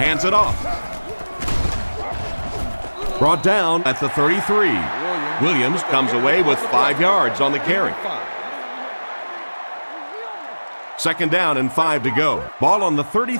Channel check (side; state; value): both; inverted; correlation -1.00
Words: it off. Brought down at the 33. Williams comes away with 5 yards on the carry. Second down and 5 to go. Ball on the